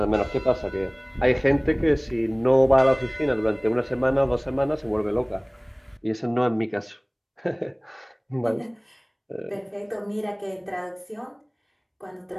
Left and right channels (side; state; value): both; identical; correlation 1.00